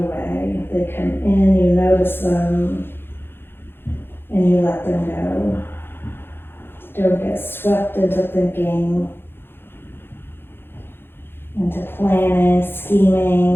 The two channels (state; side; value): late; right; 0.11 ms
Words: They come in, you notice them, and you let them go. Don't get swept into thinking, into planning,